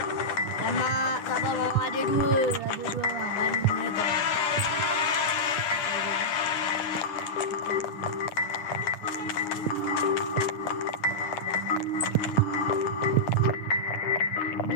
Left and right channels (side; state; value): right; late; 9.9 ms